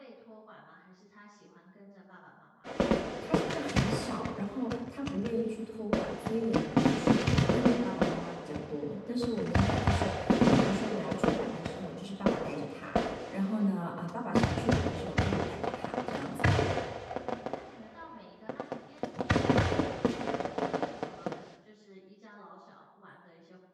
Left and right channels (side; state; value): both; identical; correlation 1.00